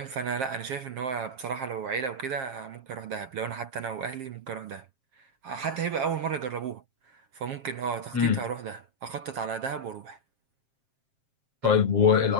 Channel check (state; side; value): late; left; 7.5 ms